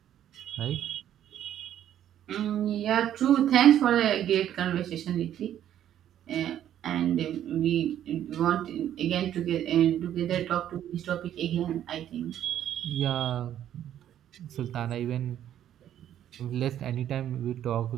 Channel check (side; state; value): left; quieter; 11.0 dB